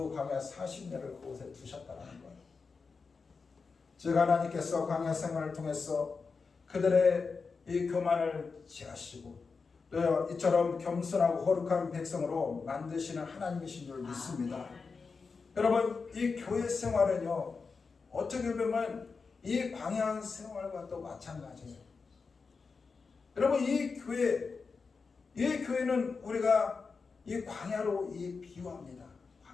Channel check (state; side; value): quieter; right; 4.8 dB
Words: 광야 40년을 그곳에 두셨다는 거예요. 즉 하나님께서 광야 생활을 통해서 그들의 이 교만을 제하시고 또 이처럼 겸손하고 거룩한 백성으로 만드시는 하나님이신 줄 믿습니다. 여러분, 이 교회 생활은요, 어떻게 보면 이 광야 생활과 또 마찬가지예요. 여러분, 이 교회는 우리가 이 광야로 비유합니다.